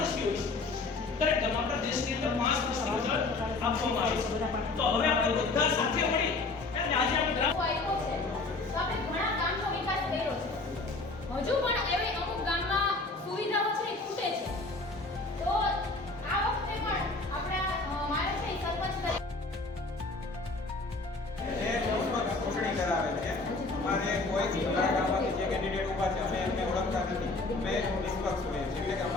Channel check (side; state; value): right; quieter; 3.4 dB